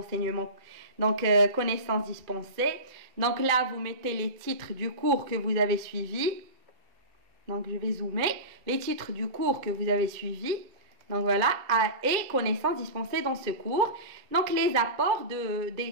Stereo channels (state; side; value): late; left; 2.3 ms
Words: donc connaissances dispensées. Donc là, vous mettez les titres du cours que vous avez suivi. Donc, je vais zoomer. Les titres du cours que vous avez suivi. Donc voilà, et connaissances dispensées dans ce cours. Donc les apports